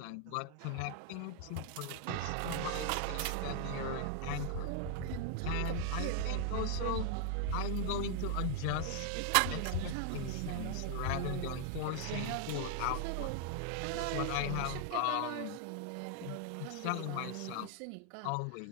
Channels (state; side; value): different; both; correlation 0.00